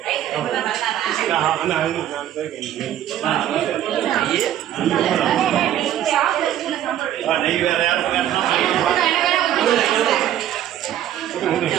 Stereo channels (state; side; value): quieter; left; 11.5 dB